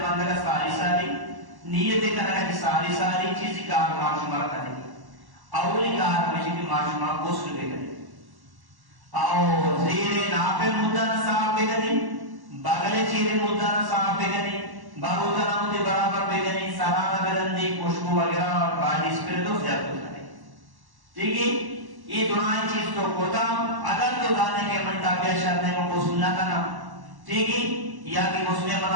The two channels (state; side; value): late; left; 1.1 ms